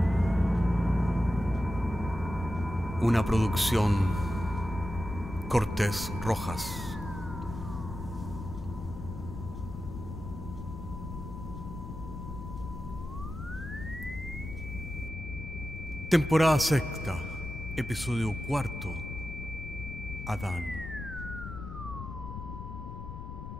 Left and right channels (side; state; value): left; noise; rumble, 9 dB below the sound